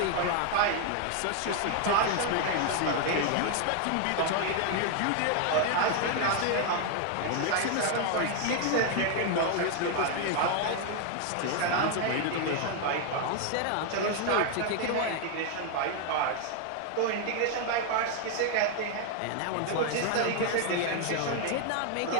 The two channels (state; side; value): different; both; correlation 0.00